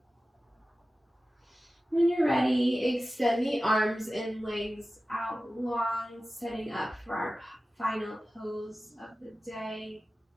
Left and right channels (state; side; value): normal; both; correlation 0.95